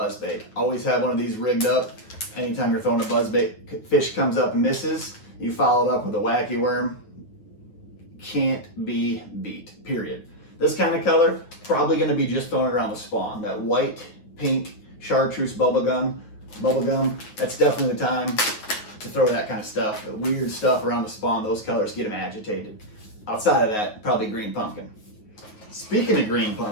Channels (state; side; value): late; right; 9.2 ms